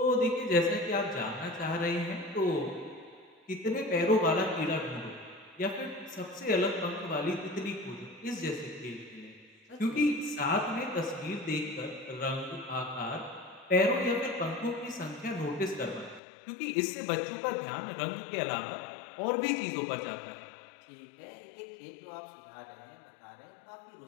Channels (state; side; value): drops out; right; at 16.2 s